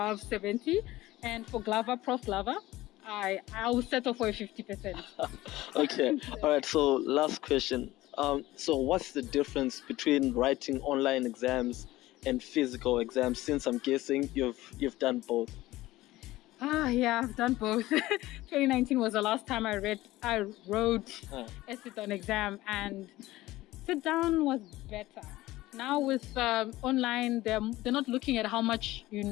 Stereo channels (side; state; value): right; quieter; 17.3 dB